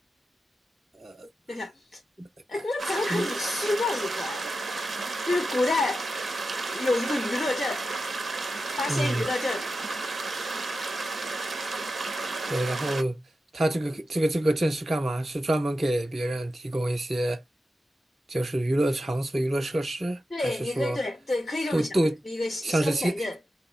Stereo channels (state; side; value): normal; both; correlation 0.91